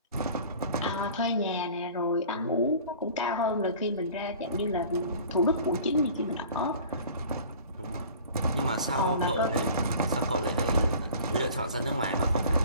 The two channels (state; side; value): inverted; both; correlation -0.45